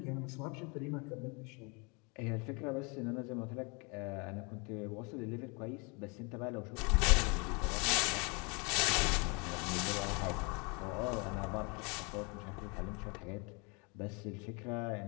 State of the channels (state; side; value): quieter; right; 31.5 dB